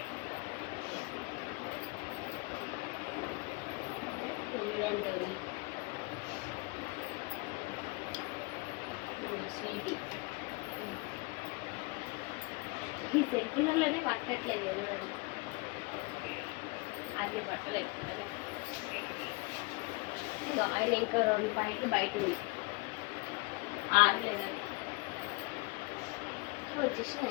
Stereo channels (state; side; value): quieter; right; 26.6 dB